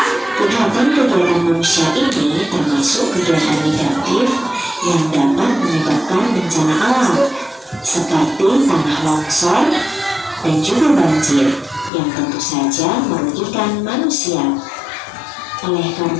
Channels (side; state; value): right; drops out; at 11.9 s